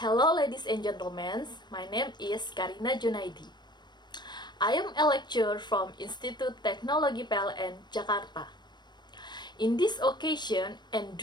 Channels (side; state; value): right; late; 0.21 ms